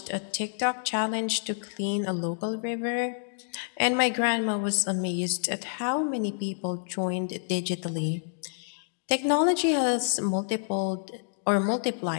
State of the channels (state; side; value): silent; right; digital silence